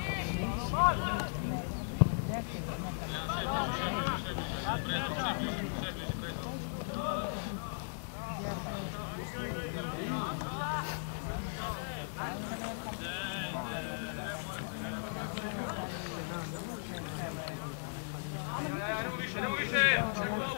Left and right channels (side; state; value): right; silent; digital silence